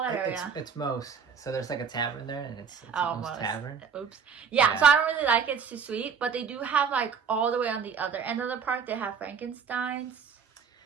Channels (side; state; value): left; quieter; 6.6 dB